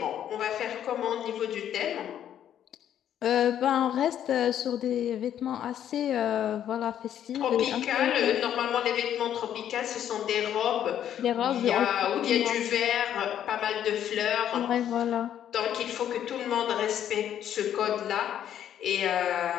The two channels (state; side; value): quieter; right; 10.3 dB